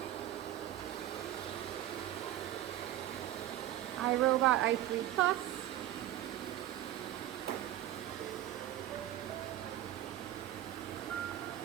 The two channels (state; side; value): quieter; left; 13.1 dB